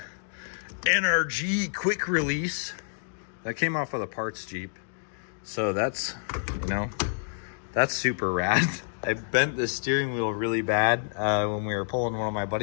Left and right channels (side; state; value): right; silent; digital silence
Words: NRG quick release that came off of the parts Jeep. So that's, you know, that's super rad. I bent the steering wheel really bad when we were pulling one of my